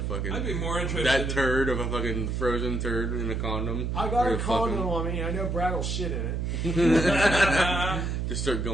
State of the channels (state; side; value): noise; right; hum, 1 dB below the sound